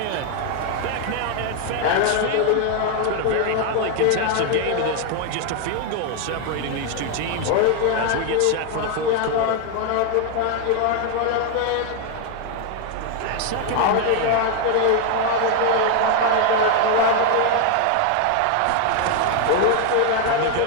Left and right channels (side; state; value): both; different; correlation 0.00